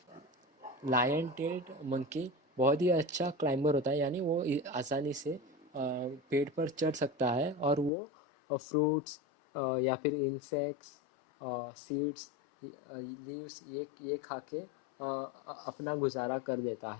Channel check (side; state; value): right; drops out; at 7.9 s